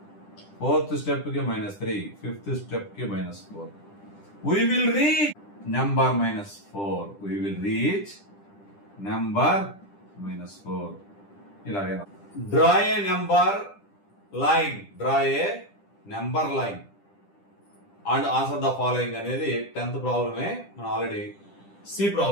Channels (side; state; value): right; late; 10 ms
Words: ఫోర్త్ స్టెప్ కి -3, ఫిఫ్త్ స్టెప్ కి -4. we will reach number -4. we will reach number -4. ఇలాగే draw a number line, and answer the following అనేది 10th ప్రాబ్లమే. మనం ఆల్రెడీ సి